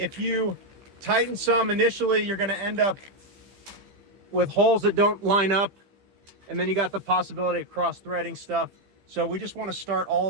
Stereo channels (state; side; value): late; left; 15 ms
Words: you tighten some initially, you're going to end up with holes that don't line up, and then you got the possibility of cross-threading stuff. So we just want to start all